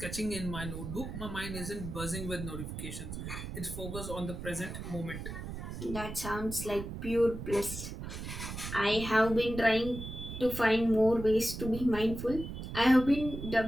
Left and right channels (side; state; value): right; noise; rumble, 8 dB below the sound